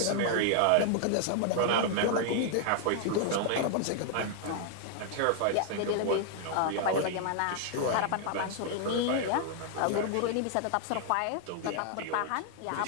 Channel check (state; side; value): different; both; correlation 0.00